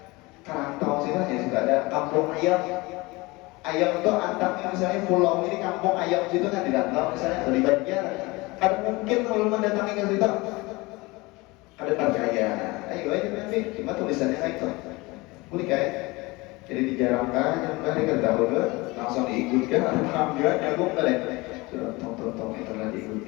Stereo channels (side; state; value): right; quieter; 23.3 dB